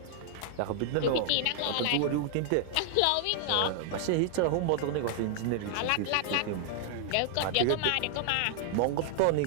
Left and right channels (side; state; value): both; different; correlation 0.00